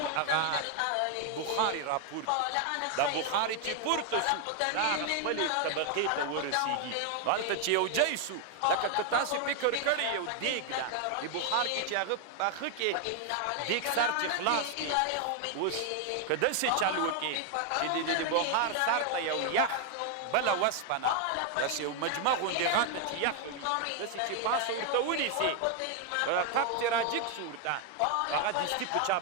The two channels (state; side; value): different; both; correlation 0.00